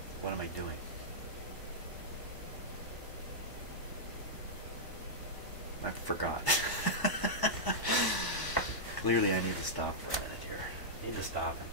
what am I doing? I forgot. Clearly I need to stop for a minute here. Need to stop and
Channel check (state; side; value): late; right; 1.0 ms